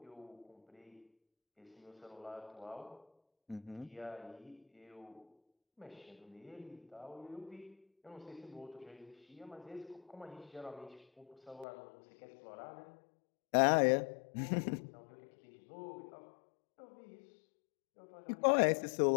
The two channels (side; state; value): right; drops out; at 11.7 s